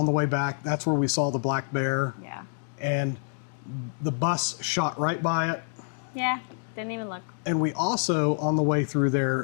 the way back, that's where we saw the black bear. Yeah. And the bus shot right by it. Yeah. Didn't even look. And we also, on the way through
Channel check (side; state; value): right; silent; 60 dB below the other